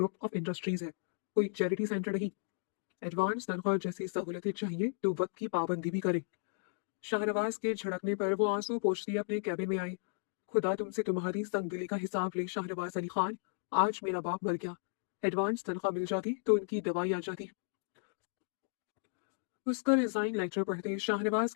ऑफ इंडस्ट्रीज है, कोई चैरिटी सेंटर नहीं। एडवांस तनख्वाह जैसी सहूलतें चाहिए तो वक्त की पाबंदी भी करें। शाहनवाज के झड़कने पर वो आंसू पोंछती अपने कैबिन में आई। खुदा तुमसे तुम्हारी संगदिली का हिसाब ले शाहनवाज अली खान। आज मेरा बाप मर गया, एडवांस तनख्वाह मिल जाती तो उनकी दवाई आ जाती। उसका रिजाइन लेटर पढ़ते शाहनवाज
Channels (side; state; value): right; silent; digital silence